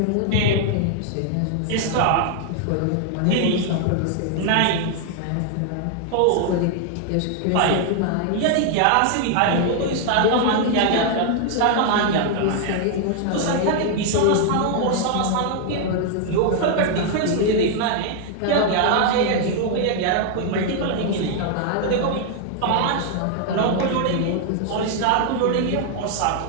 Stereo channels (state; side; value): different; both; correlation 0.00